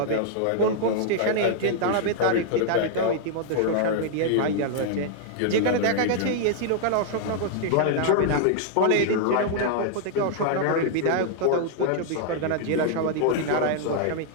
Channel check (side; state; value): both; different; correlation -0.01